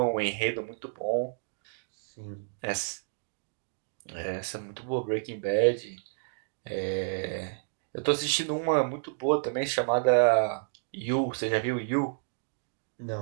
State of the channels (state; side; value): silent; left; digital silence